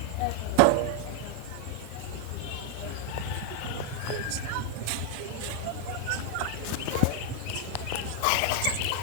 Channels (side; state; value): both; different; correlation 0.00